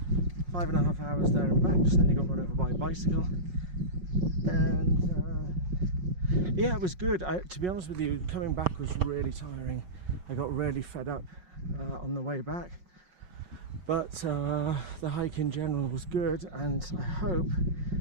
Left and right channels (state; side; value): late; left; 5.5 ms